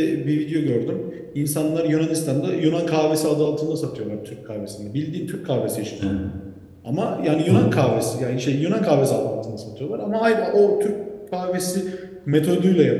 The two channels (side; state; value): both; identical; correlation 1.00